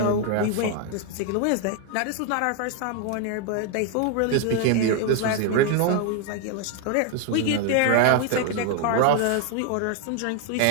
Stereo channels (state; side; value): different; both; correlation 0.00